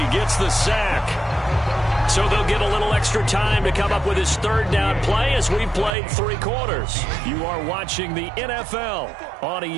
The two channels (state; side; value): drops out; left; at 6.0 s